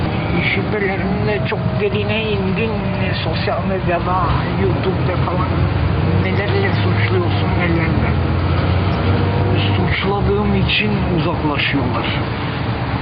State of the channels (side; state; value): both; identical; correlation 1.00